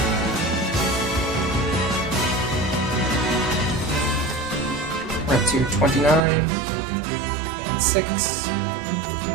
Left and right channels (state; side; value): drops out; left; at 6.2 s